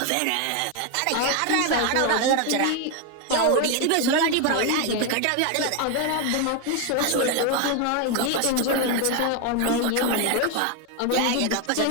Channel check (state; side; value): different; both; correlation 0.01